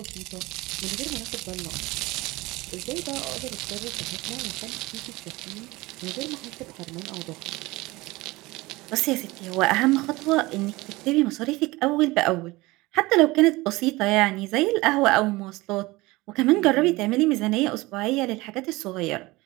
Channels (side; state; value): left; quieter; 21.1 dB